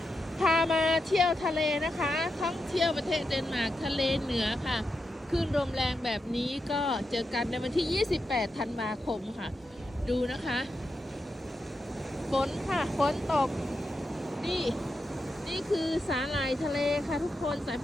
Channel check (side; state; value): both; normal; correlation 0.87